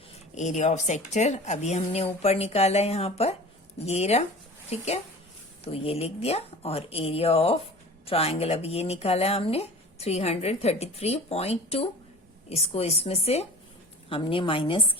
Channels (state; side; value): normal; both; correlation 0.40